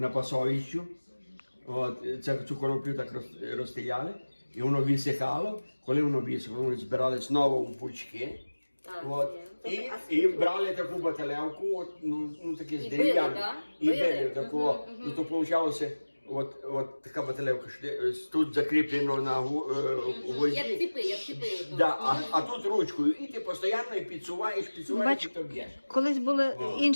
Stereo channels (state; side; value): inverted; both; correlation -1.00